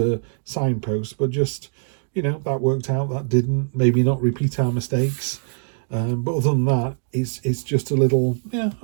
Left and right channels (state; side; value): silent; left; digital silence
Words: signpost, but just, that worked out, that didn't. Maybe not repeat our mistakes. But other than that, it's just a little, yeah,